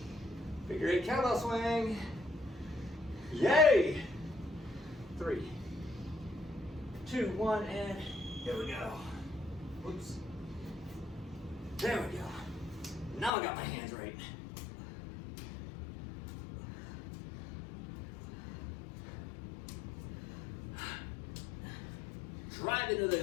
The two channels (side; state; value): right; drops out; at 13.3 s